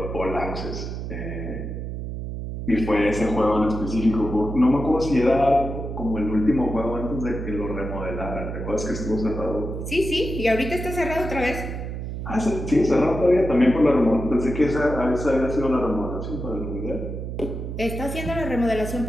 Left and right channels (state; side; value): noise; right; hum, 6 dB below the sound